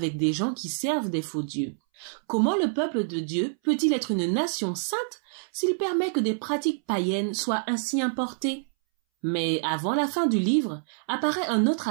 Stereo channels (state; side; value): silent; left; 60 dB below the other